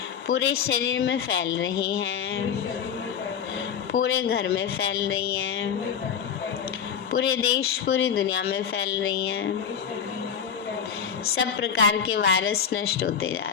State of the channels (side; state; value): right; quieter; 7.7 dB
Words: पूरे शरीर में फैल रही हैं, पूरे घर में फैल रही हैं, पूरे देश पूरी दुनिया में फैल रही हैं। सब प्रकार के वायरस नष्ट होते जा